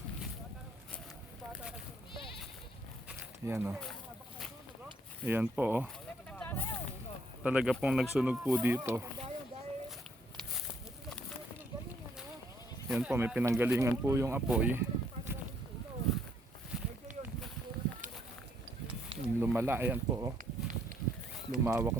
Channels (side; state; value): both; normal; correlation 0.69